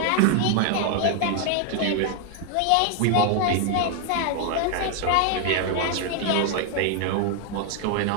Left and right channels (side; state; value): both; different; correlation 0.00